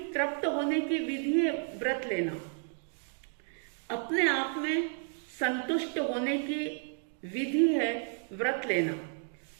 तृप्त होने की विधि है व्रत लेना, अपने आप में संतुष्ट होने की विधि है व्रत लेना,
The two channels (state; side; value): silent; left; 56 dB below the other